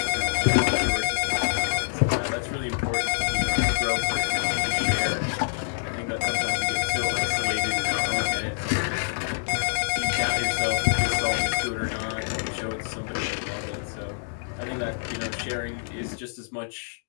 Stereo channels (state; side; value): silent; right; digital silence